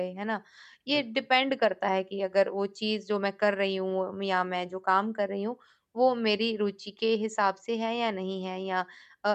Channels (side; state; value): both; identical; correlation 1.00